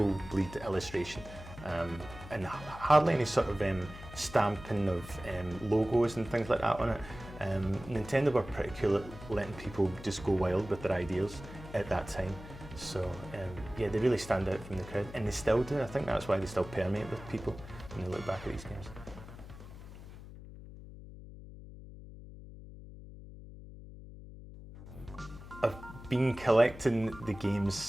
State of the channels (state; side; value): noise; left; hum, 14 dB below the sound